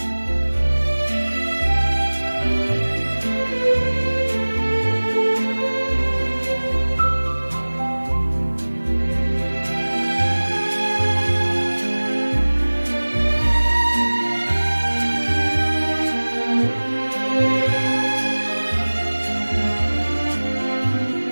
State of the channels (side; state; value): both; inverted; correlation -1.00